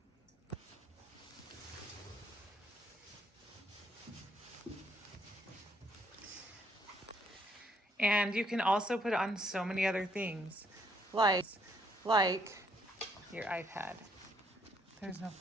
And you can also put it on so many other things, like your iPad. There's no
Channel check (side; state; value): both; normal; correlation 0.70